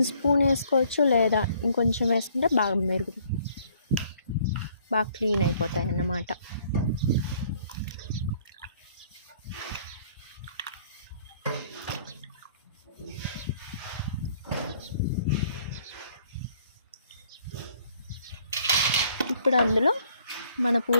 స్పూన్ వేసుకోవచ్చు, లేదా ఇంకొంచెం వేసుకుంటే బాగా క్లీన్ అయిపోతాయి అన్నమాట. ఇప్పుడు అందులో మన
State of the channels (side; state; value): both; inverted; correlation -0.61